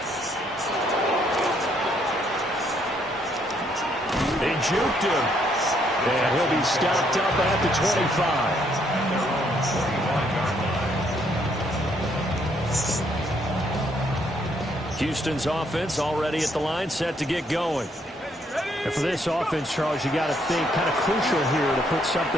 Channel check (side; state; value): both; normal; correlation 0.70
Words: They juked him. And he'll be stopped up at the 25. Houston's offense already at the line, set to get going. And for this offense, Charles, you got to think kind of crucial here to put